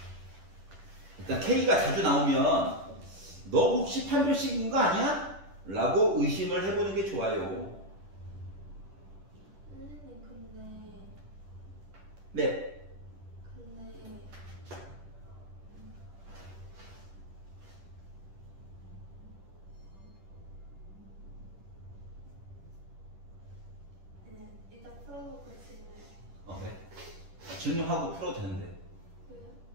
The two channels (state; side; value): late; left; 10 ms